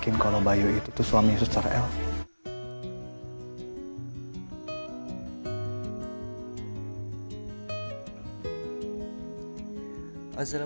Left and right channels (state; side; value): inverted; both; correlation -1.00